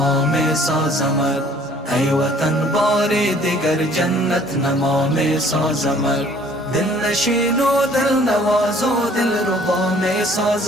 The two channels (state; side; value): normal; both; correlation 0.56